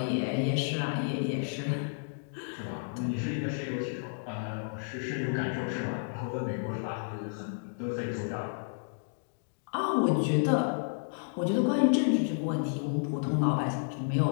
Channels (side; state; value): right; silent; digital silence